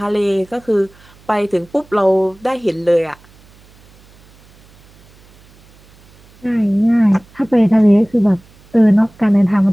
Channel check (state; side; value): noise; right; hum, 28 dB below the sound